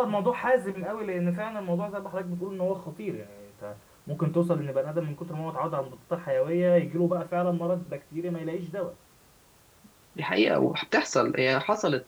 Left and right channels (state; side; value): identical; both; correlation 1.00